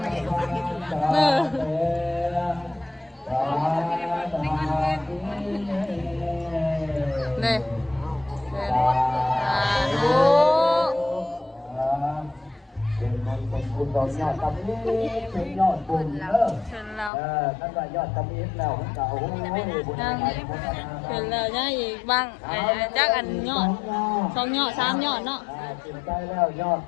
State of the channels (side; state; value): right; drops out; at 17.1 s